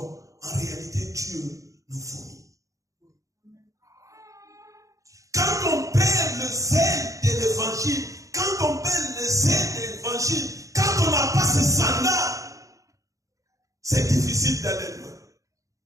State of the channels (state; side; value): late; left; 0.16 ms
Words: En réalité, Dieu nous fournit. Quand on perd le zèle de l'évangile, quand on perd le zèle de l'évangile, quand on n'a pas ce sandal, c'est difficile d'aller loin.